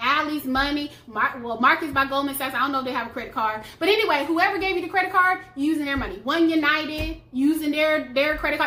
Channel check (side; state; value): both; identical; correlation 1.00